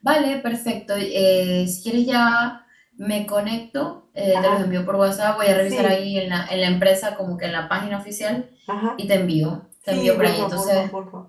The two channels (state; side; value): identical; both; correlation 1.00